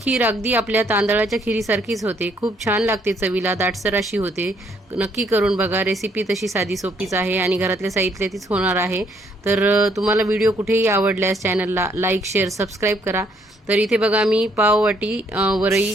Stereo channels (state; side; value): normal; both; correlation 0.68